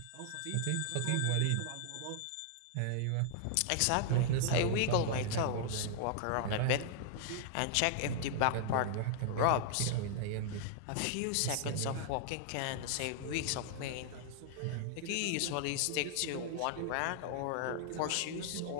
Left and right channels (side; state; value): both; different; correlation 0.00